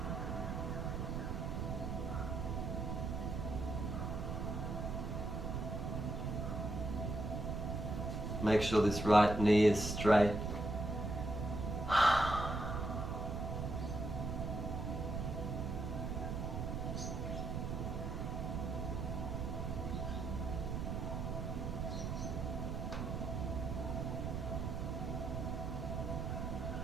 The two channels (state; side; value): noise; right; rumble, 2 dB below the sound